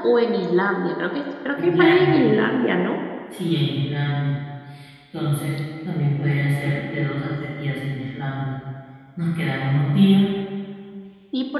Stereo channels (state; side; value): identical; both; correlation 1.00